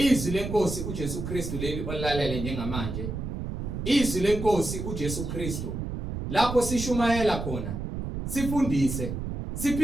lenkosi uJesu Kristu leli olalele njengamanje. Izwi lenkosi uJesu Kristu lapho sishumayela khona, sifundise,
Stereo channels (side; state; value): right; noise; rumble, 5 dB below the sound